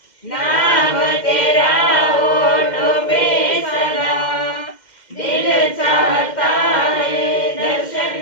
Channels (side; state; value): right; late; 2.1 ms